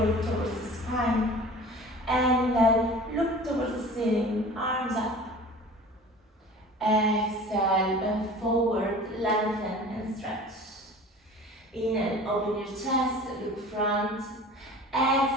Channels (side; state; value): both; normal; correlation 0.41